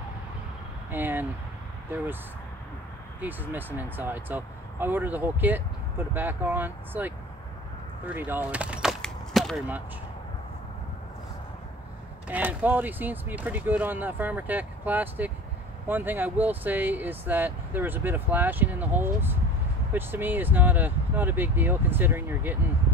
and there was pieces missing inside. So I ordered the whole kit, put it back on. It's like $30, not very much. And quality seems to be pretty good on the Farmer Tech plastic. One thing I will say is that there was a bit of flashing in the holes, which to me is not a big deal considering you're getting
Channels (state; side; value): normal; both; correlation 0.39